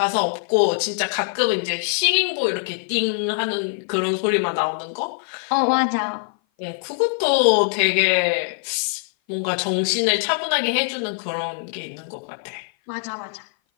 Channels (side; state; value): right; silent; 57 dB below the other